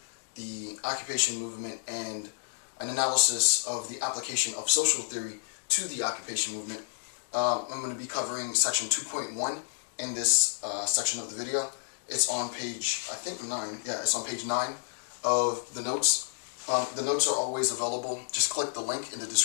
the occupation movement and an analysis of the application of social theory to the occupation movement. I'm going to be covering section 2.1 in this section of the video. It's on page, I think 9. Yeah, it's on page 9 of the notes. The notes are always available. Just click the link in the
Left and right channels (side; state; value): right; silent; digital silence